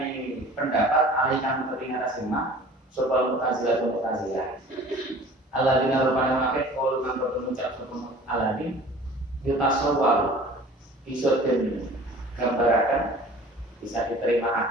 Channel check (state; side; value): normal; both; correlation 0.45